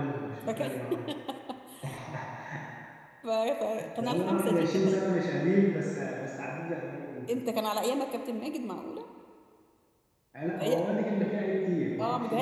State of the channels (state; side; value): identical; both; correlation 1.00